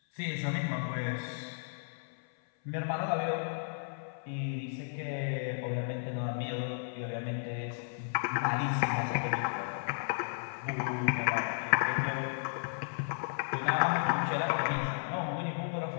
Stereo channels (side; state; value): right; silent; 55 dB below the other